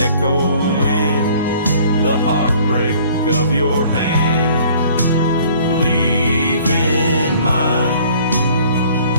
echoing the heartbreak of your hand, leaving mine.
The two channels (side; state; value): both; inverted; correlation -0.54